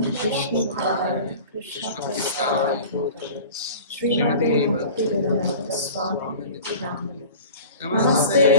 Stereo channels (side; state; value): both; inverted; correlation -0.40